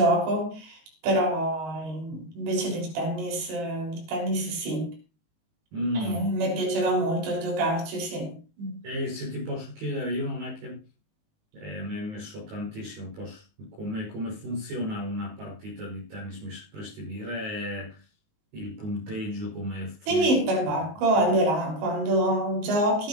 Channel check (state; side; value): late; left; 19 ms